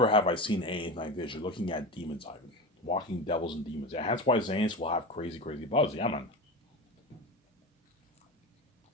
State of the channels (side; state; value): both; normal; correlation 0.25